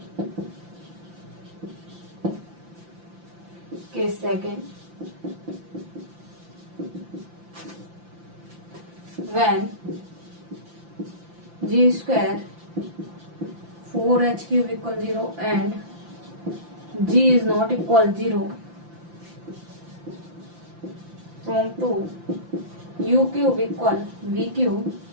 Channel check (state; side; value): late; left; 5.8 ms